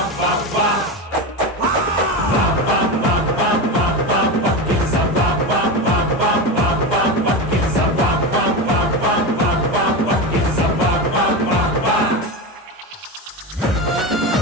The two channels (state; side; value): normal; both; correlation 0.20